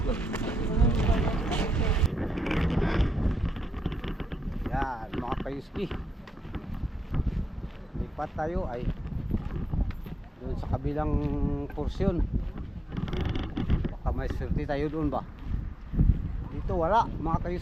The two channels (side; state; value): both; normal; correlation 0.86